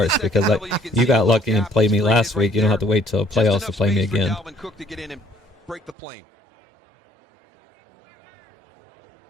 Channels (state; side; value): drops out; left; at 6.0 s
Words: because you got lucky and played me last week. You don't have to wait till playoffs to play me again.